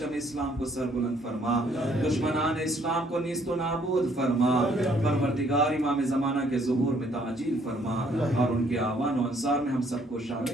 اسلام کو سر بلند فرما دشمنان اسلام کو نیست و نابود فرما پروردگار امام زمانہ کے ظہور میں تعجیل فرما اور ان کے آوان و انصار میں ہم سب کو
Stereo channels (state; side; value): normal; both; correlation 0.65